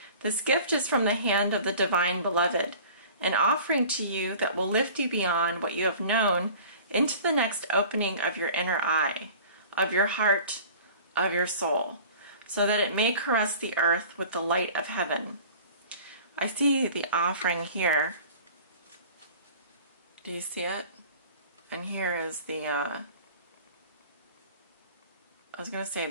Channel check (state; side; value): inverted; both; correlation -0.44